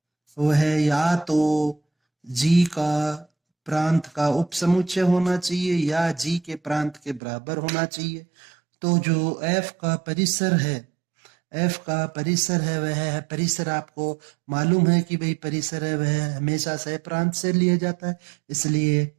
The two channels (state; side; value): drops out; left; at 7.2 s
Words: वह या तो जी का प्रांत का उपसमुच्चय होना चाहिए या जी के प्रांत के बराबर होना चाहिए। तो जो एफ का परिसर है वह परिसर आपको मालूम है कि भाई परिसर है वह हमेशा सह प्रांत से लिया जाता है, इसलिए